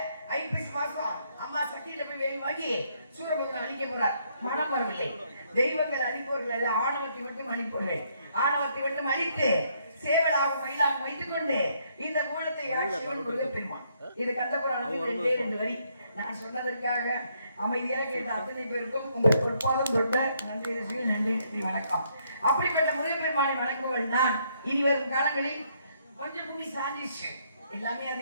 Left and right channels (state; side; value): inverted; both; correlation -0.71